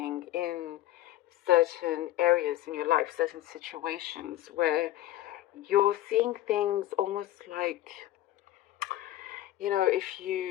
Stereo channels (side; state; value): right; quieter; 14.4 dB